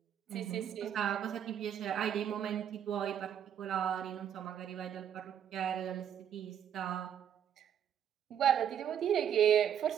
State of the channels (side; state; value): left; quieter; 9.3 dB